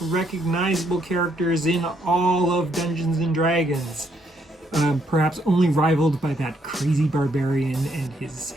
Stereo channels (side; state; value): both; normal; correlation 0.73